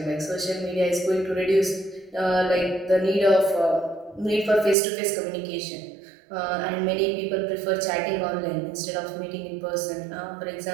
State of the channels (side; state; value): left; drops out; at 4.8 s